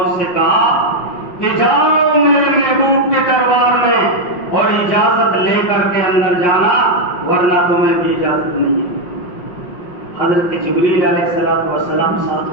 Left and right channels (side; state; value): right; late; 5.6 ms